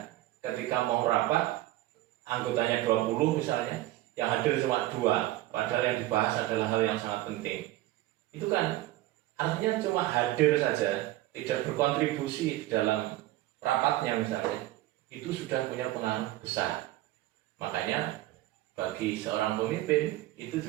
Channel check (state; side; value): quieter; left; 16.1 dB